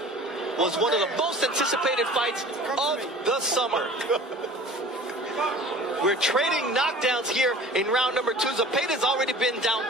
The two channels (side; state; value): both; normal; correlation 0.43